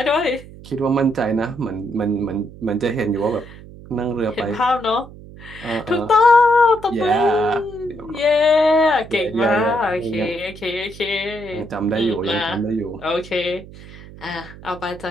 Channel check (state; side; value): noise; right; hum, 17 dB below the sound